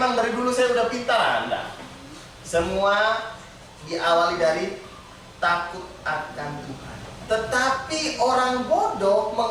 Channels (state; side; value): identical; both; correlation 1.00